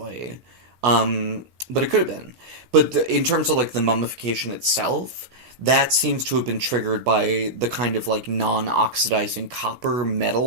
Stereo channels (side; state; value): left; late; 17 ms